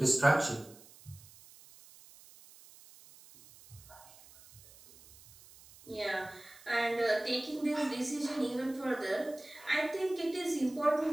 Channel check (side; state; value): right; noise; hiss, 22 dB below the sound